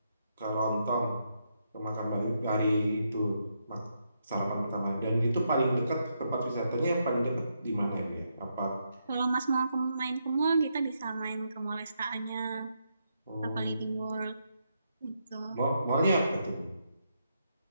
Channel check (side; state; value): both; inverted; correlation -0.80